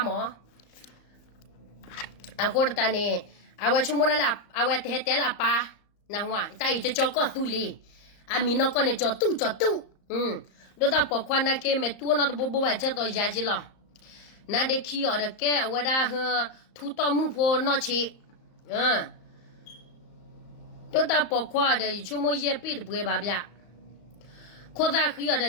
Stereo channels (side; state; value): right; late; 34 ms